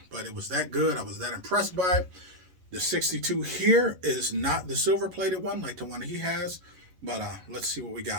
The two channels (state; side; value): late; left; 11 ms